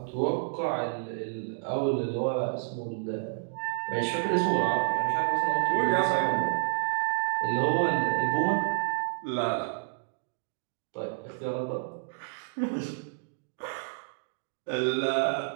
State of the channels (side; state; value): left; silent; digital silence